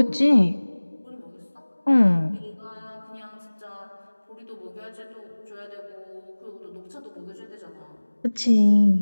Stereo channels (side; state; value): both; inverted; correlation -1.00